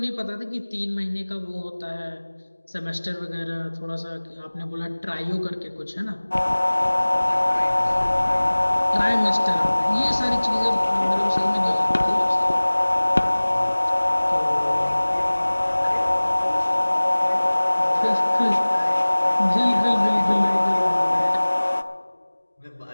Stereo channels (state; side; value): inverted; both; correlation -1.00